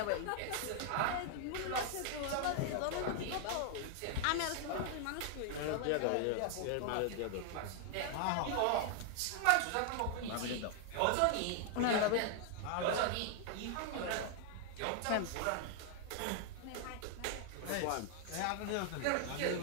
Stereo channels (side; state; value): both; different; correlation 0.00